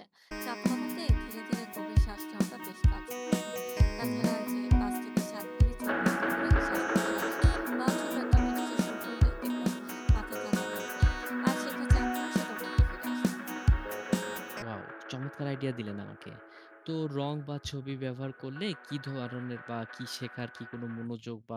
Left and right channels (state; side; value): identical; both; correlation 1.00